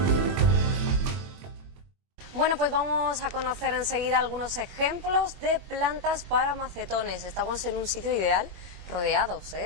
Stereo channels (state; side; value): late; left; 22 ms